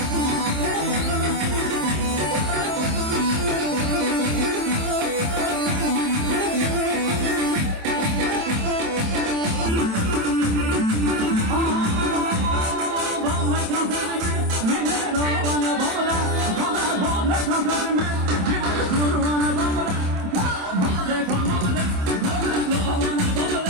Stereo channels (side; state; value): left; late; 27 ms